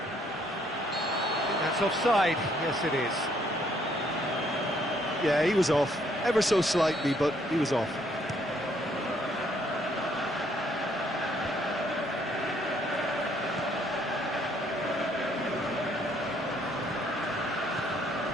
I think that's offside. Yes, it is. Yeah, he was off. Ever so slightly, but he was off.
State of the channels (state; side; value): normal; both; correlation 0.67